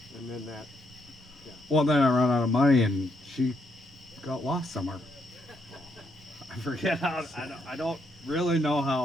And then that. Well, then I ran out of money and she got lost somewhere. I forget how. I don't really know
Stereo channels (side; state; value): both; normal; correlation 0.76